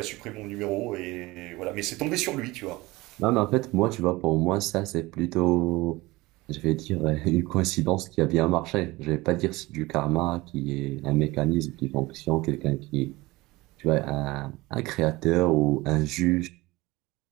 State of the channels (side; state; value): left; quieter; 20.9 dB